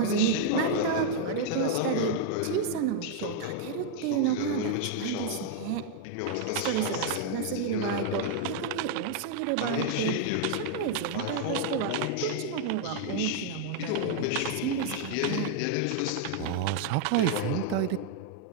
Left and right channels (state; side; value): different; both; correlation 0.00